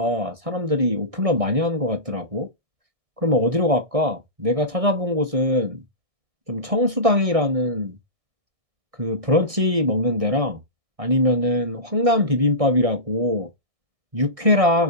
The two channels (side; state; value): left; late; 1.6 ms